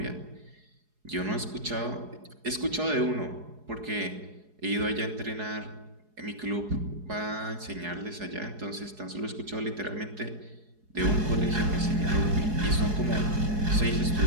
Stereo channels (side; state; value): left; late; 4.8 ms